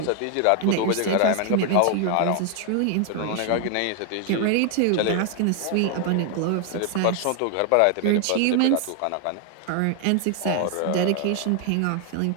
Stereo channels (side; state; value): both; different; correlation 0.00